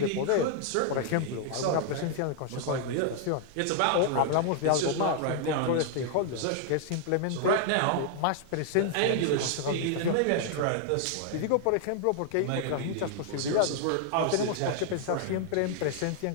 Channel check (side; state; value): both; different; correlation 0.00